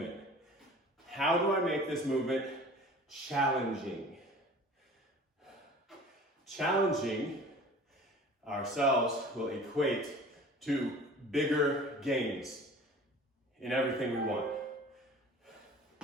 How do I make this movement challenging? Challenging ourselves will equate to bigger gains in everything we want.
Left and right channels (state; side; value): normal; both; correlation 0.44